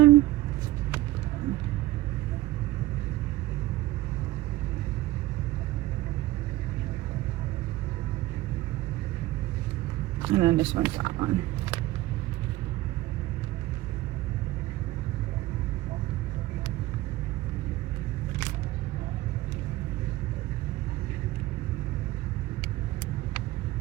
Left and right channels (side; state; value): left; quieter; 17.2 dB